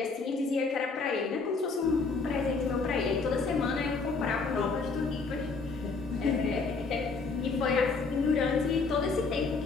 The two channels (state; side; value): quieter; right; 4.3 dB